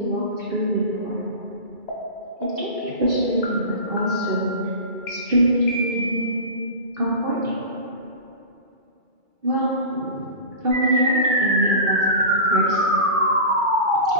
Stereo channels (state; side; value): late; left; 2.3 ms